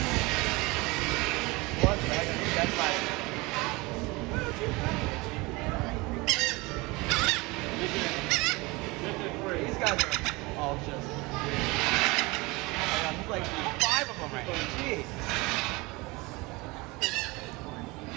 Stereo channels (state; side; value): quieter; left; 24.0 dB